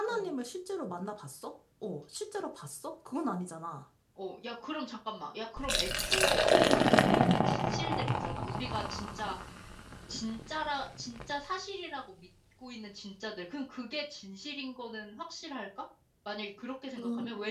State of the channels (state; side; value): identical; both; correlation 1.00